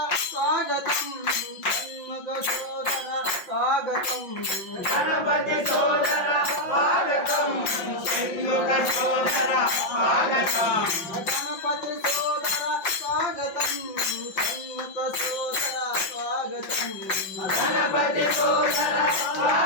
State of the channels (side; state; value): right; late; 5.6 ms